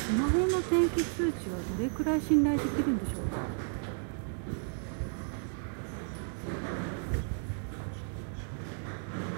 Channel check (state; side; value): silent; left; 55 dB below the other